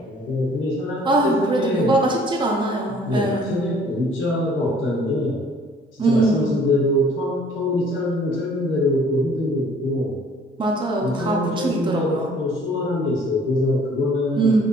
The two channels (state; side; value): normal; both; correlation 0.56